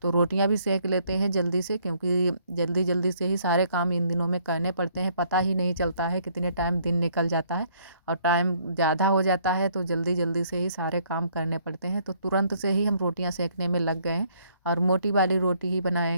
तो रोटियां भी सेक लेते हैं जल्दी से, क्योंकि जल्दी जल्दी से ही सारे काम इन दिनों में करने पड़ते हैं। पता ही नहीं चलता है कितने टाइम दिन निकल जाता है, और टाइम ज़्यादा हो जाता है तो जल्दी जल्दी से ही सारे काम करने पड़ते हैं। तो तुरंत से ही हम रोटियाँ सेकने में लग गए हैं। और मोटी वाली रोटी ही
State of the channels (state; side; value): inverted; both; correlation -0.65